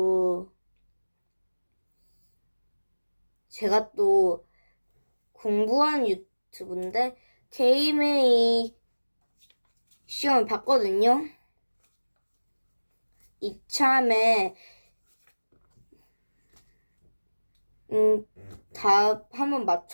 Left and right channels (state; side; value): inverted; both; correlation -1.00